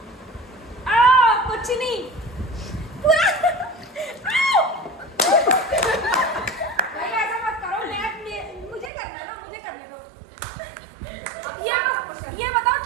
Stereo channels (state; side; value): drops out; left; at 8.9 s